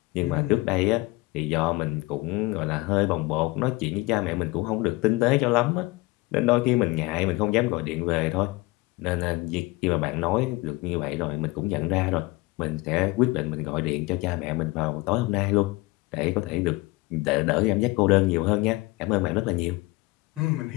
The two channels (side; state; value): right; quieter; 22.4 dB